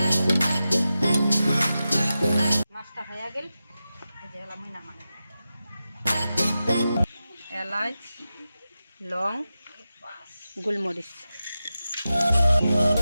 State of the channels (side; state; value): both; inverted; correlation -0.92